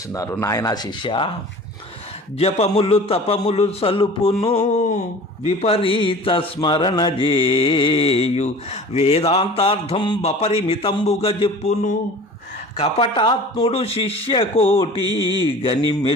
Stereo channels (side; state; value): both; normal; correlation 0.42